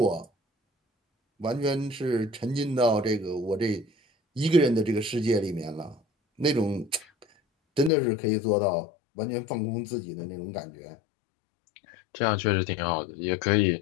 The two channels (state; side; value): drops out; right; at 7.9 s